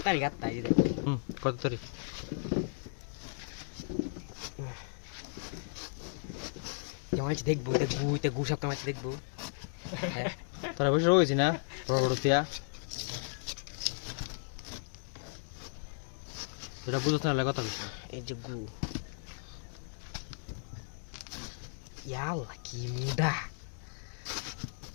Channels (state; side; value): silent; right; 54 dB below the other